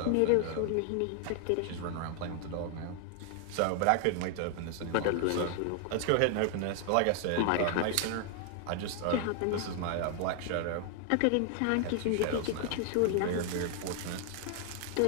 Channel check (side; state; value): both; different; correlation 0.00